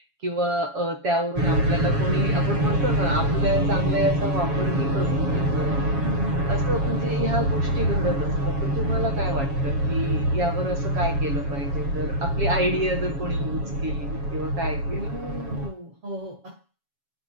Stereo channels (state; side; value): late; left; 7.2 ms